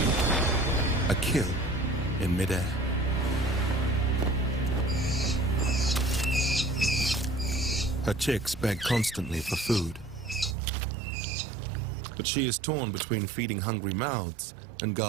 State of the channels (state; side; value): drops out; left; at 10.6 s